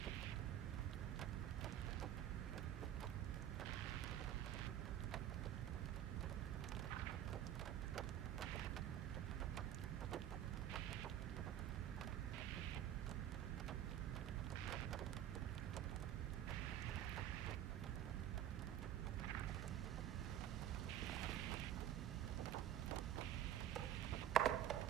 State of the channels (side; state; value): left; quieter; 11.1 dB